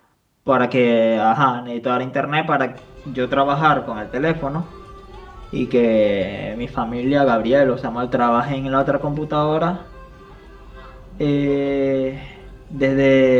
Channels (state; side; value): identical; both; correlation 1.00